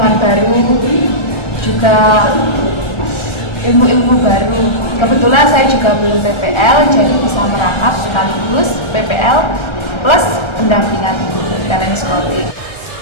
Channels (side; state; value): right; late; 1.3 ms